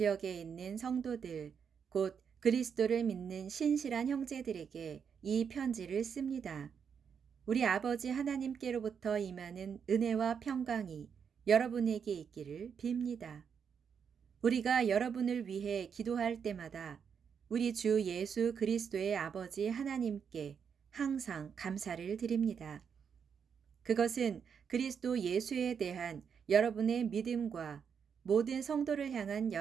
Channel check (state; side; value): quieter; left; 7.0 dB